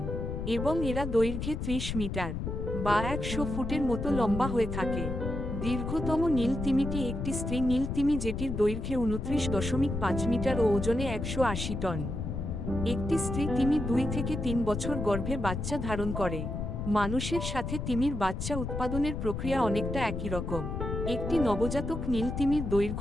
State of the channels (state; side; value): noise; left; rumble, 4 dB below the sound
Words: এবং এরা দৈর্ঘ্যে ৩০ মিটার বা ১০০ ফুটের মতো লম্বা হয়ে থাকে। দীর্ঘতম নীল তিমিটি একটি স্ত্রী নীল তিমি, যেটির দৈর্ঘ্যে ২৯.৫ মিটার ও ওজনে ১৮০ টন। একটি স্ত্রী তিমি ২ থেকে ৩ বছর গর্ভে বাচ্চা ধারণ করে। মানুষের সাথে তিমির বাচ্চা উৎপাদনের প্রক্রিয়া অনেকটা একই রকম। একটি নবজাতক নীল তিমির